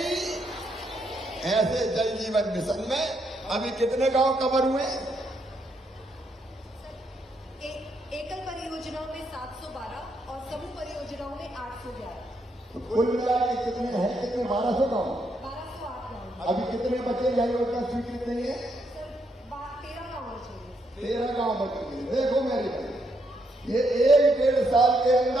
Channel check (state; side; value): normal; both; correlation 0.77